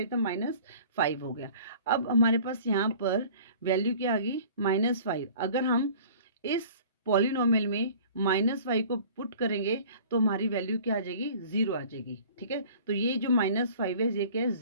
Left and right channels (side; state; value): both; inverted; correlation -0.47